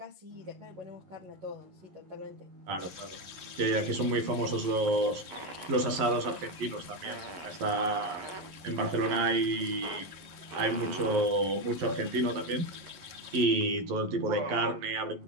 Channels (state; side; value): late; left; 11 ms